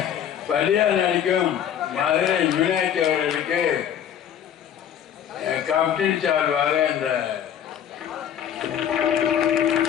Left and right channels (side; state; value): right; quieter; 9.5 dB